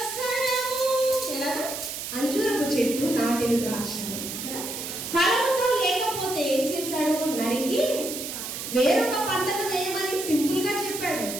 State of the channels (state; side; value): noise; right; hiss, 6 dB below the sound